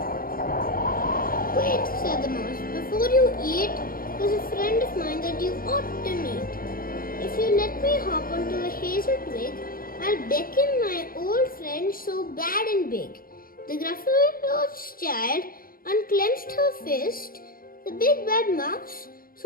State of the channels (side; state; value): right; late; 0.42 ms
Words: Wait, said the mouse, before you eat, there's a friend of mine that you ought to meet. If you let me hop onto a hazel twig, I'll beckon my old friend so bad and big. The Gruffalo's child unclenched her fist. The big bad mouse,